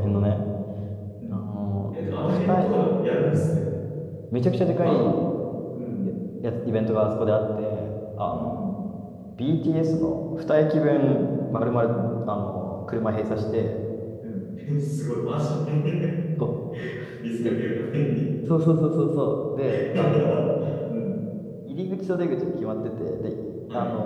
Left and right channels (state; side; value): identical; both; correlation 1.00